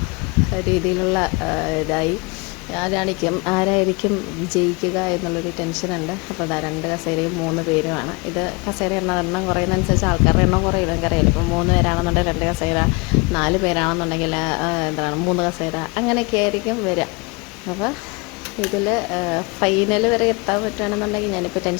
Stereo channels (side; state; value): right; quieter; 27.8 dB